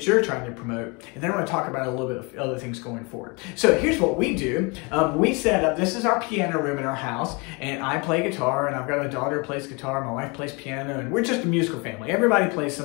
you're trying to promote. And then I want to talk about a little bit of other things going forward. So here's what we do. We set up, this is our piano room in our house, and I play guitar, and I've got a daughter who plays guitar, my wife plays piano, and we're just a musical family. Everybody plays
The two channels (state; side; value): quieter; right; 29.6 dB